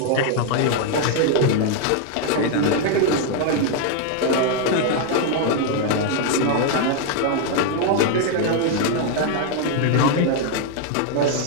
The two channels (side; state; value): both; different; correlation 0.01